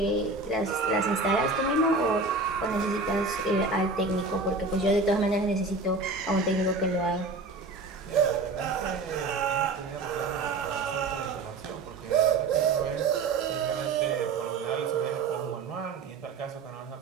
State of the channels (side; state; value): left; quieter; 3.7 dB